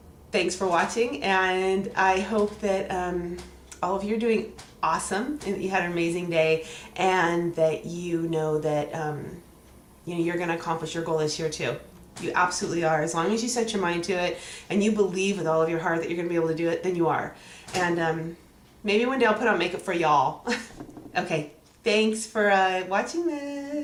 thanks for watching, and I hope that all of you are doing awesome and that you had an amazing day, and that you know that you're going to accomplish your goal this year too. You absolutely are. As long as you set your mind to it and you believe with all of your heart that you're going to be able to do it, then you are. And maybe one day I'll put on makeup for y'all. Okay, thanks for watching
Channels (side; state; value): both; identical; correlation 1.00